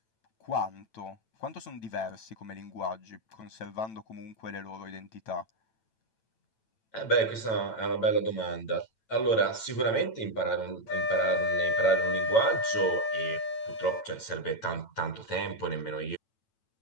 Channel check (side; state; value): right; late; 9.0 ms